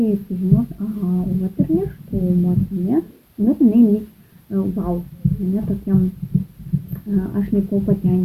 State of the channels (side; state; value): both; identical; correlation 1.00